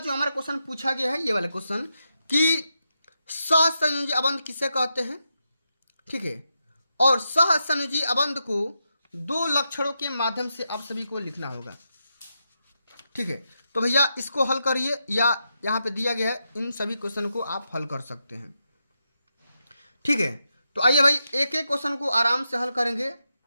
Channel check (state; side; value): inverted; both; correlation -0.86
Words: हमारा क्वेश्चन पूछा गया है ये वाला क्वेश्चन कि सहसंयोजी अबंध किसे कहते हैं। ठीक है, और सहसंयोजी अबंध को दो लक्षणों के माध्यम से आप सभी को लिखना होगा। ठीक है, तो भैया इसको हल करिए या यहाँ पे दिया गया है, इन सभी क्वेश्चन को आप हल कर सकते हैं। ठीक है, तो आइए भाई एक एक क्वेश्चन को आराम से हल करेंगे,